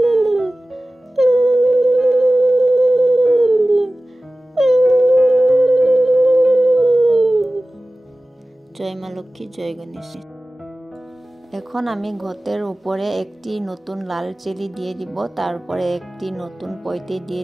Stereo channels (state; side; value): normal; both; correlation 0.97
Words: জয় মা লক্ষ্মী, জয় গণেশ। এখন আমি ঘটের উপরে একটি নতুন লাল চেলি দিয়ে দিব, তারপরে একটি নতুন পৈতে দিয়ে